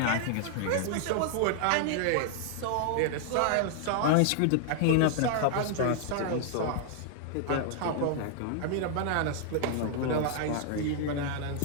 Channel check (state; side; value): different; both; correlation 0.00